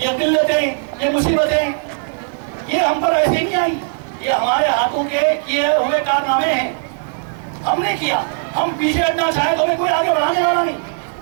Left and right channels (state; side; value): silent; left; digital silence